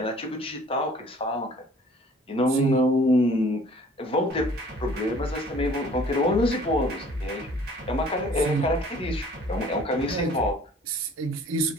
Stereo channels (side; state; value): both; normal; correlation 0.53